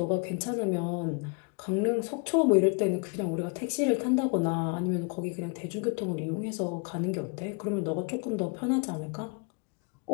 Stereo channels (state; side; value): quieter; right; 34.5 dB